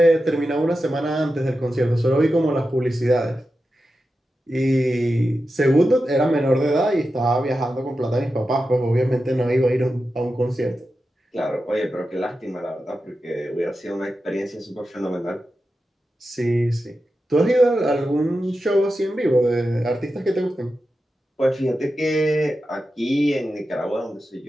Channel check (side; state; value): both; normal; correlation 0.91